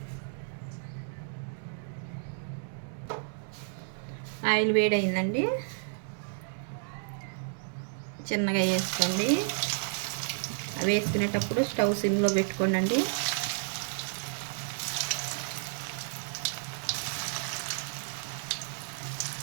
ఆయిల్ వేడైందండి, చిన్నగా వేసుకోండి. వేసుకునేటప్పుడు స్టవ్ సిమ్లో పెట్టుకోండి.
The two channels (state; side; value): silent; left; digital silence